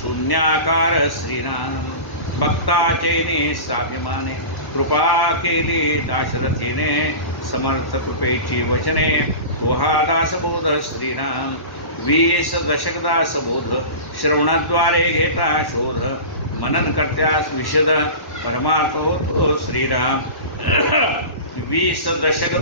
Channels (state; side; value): late; right; 1.1 ms